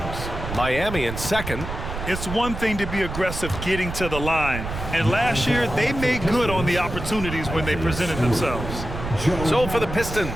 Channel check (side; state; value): right; noise; rumble, 7 dB below the sound